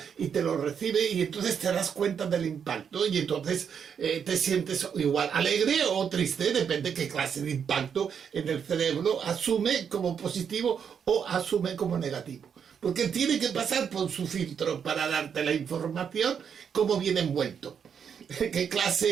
y te lo recibe, y entonces te das cuenta del impacto, y entonces te sientes igual alegre o triste, depende qué clase de impacto en el cerebro asume como positivo o asume como negativo. Porque tiene que pasar por su filtro para darte la información como viene envuelto. Qué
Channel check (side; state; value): left; quieter; 7.4 dB